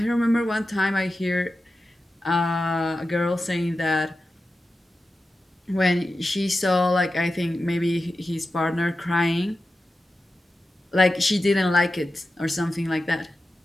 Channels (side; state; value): both; normal; correlation 0.92